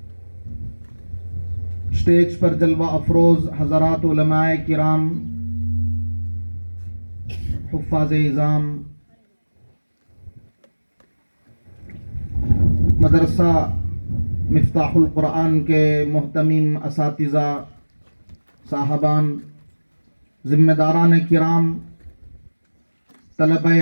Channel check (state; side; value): inverted; both; correlation -1.00